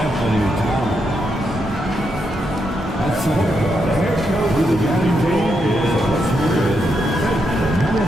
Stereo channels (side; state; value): both; normal; correlation 0.81